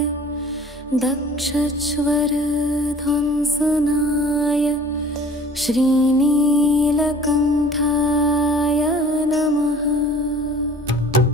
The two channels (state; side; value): normal; both; correlation 0.49